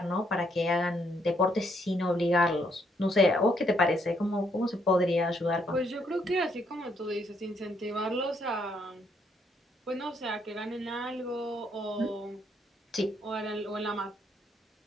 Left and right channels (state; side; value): normal; both; correlation 0.72